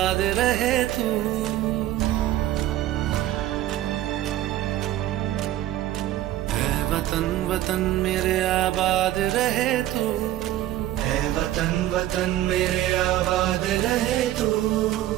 रहे तू ऐ वतन वतन मेरे आबाद रहे तू ऐ वतन वतन मेरे आबाद रहे तू।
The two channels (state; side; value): quieter; left; 13.7 dB